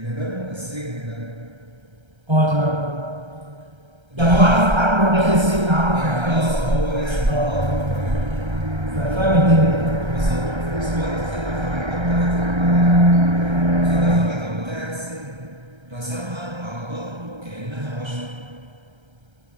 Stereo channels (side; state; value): left; late; 1.3 ms